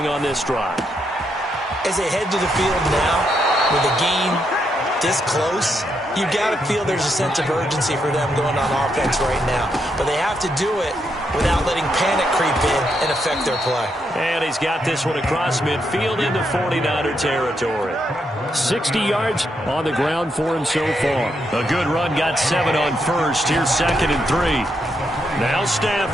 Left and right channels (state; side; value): normal; both; correlation 0.79